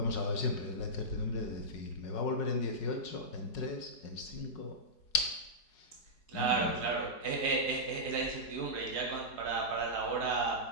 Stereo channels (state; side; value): late; right; 4.8 ms